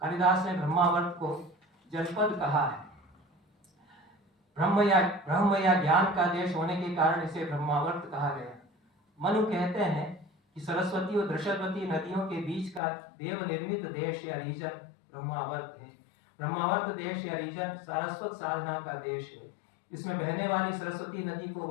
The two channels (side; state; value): right; drops out; at 12.8 s